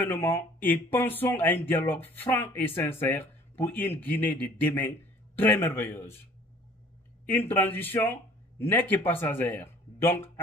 et pensons à un dialogue franc et sincère pour une Guinée de demain très merveilleuse. Une transition n'est que passagère. Donc,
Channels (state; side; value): normal; both; correlation 0.52